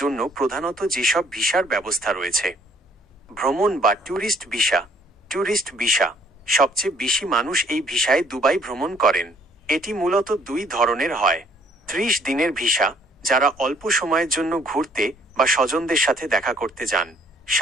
জন্য প্রধানত যেসব ভিসার ব্যবস্থা রয়েছে: ভ্রমণ বা ট্যুরিস্ট ভিসা। ট্যুরিস্ট ভিসা সবচেয়ে বেশি মানুষ এই ভিসায় দুবাই ভ্রমণ করেন। এটি মূলত দুই ধরনের হয়: 30 দিনের ভিসা, যারা অল্প সময়ের জন্য ঘুরতে বা স্বজনদের সাথে দেখা করতে যান।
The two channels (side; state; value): both; normal; correlation 0.63